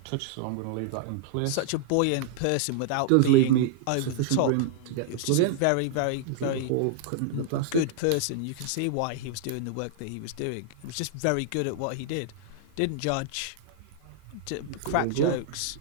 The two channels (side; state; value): both; different; correlation -0.01